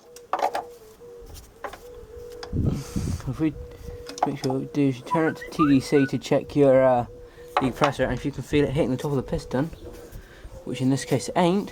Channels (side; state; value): both; identical; correlation 1.00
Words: If we make sure what we do is you turn it to TDC to check your decompressor, and if you can feel it hitting the top of the piston, which in this case it